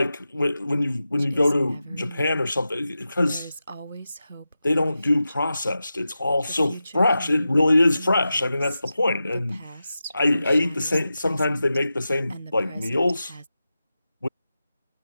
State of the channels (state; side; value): inverted; both; correlation -0.92